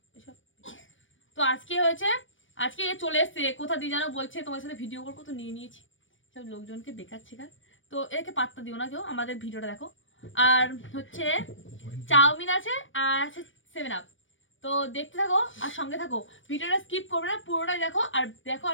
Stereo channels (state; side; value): late; right; 0.56 ms